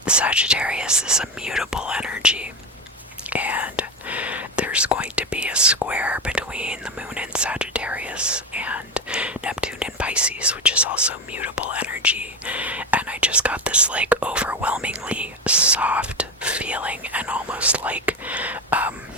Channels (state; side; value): normal; both; correlation 0.15